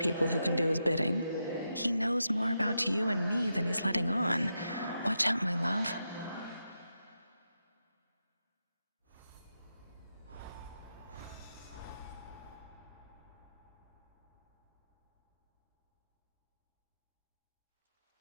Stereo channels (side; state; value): both; inverted; correlation -0.86